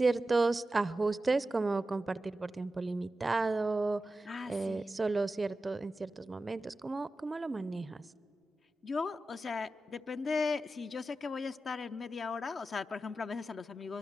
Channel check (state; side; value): normal; both; correlation 0.93